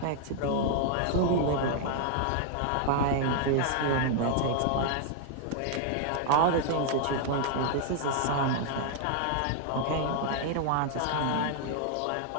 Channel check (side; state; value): both; different; correlation 0.00